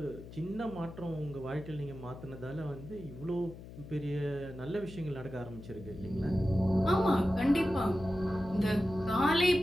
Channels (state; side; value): noise; left; hum, 15 dB below the sound